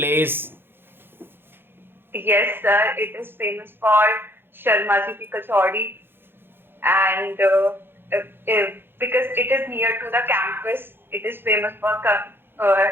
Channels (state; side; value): late; left; 0.10 ms